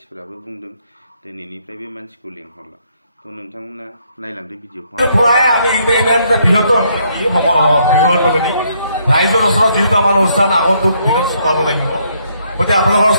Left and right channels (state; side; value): inverted; both; correlation -0.71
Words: बुंदों दिनैनिफ्राय बे मानसिखौ लेंहरला तो नोंथांमोना नायलांदो भिडिअखौ আমি ইমেইলটা বৃহত্তৰ ৰাইজৰ ওচৰত যিহেতু আমাৰ অনুষ্ঠান আগন্তুক দিনত চলাব লাগিব গতিকে আপোনালোকৰ